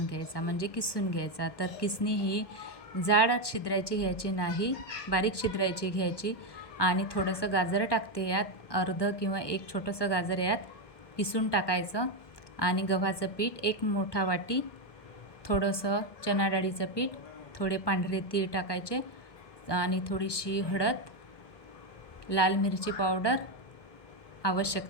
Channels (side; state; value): right; late; 1.1 ms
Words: घ्यायचा, म्हणजे किसून घ्यायचा. तर किसणी ही जाड छिद्रायची घ्यायची नाही, बारीक छिद्रायची घ्यायची. आणि थोडंसं गाजर टाकते यात, अर्ध किंवा एक छोटंसं गाजर यात किसून टाकायचं. आणि गव्हाचं पीठ एक मोठा वाटी, थोडंसं चणा डाळीचं पीठ, थोडे पांढरे तीळ टाकायचे आणि थोडीशी हळद, लाल मिरची पावडर,